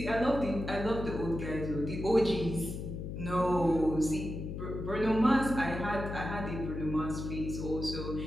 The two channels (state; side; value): noise; left; hum, 6 dB below the sound